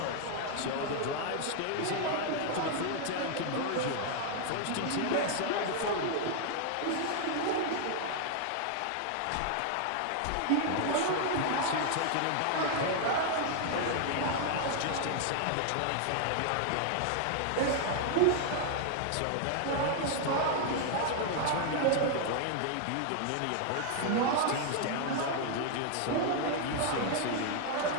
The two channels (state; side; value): different; both; correlation 0.00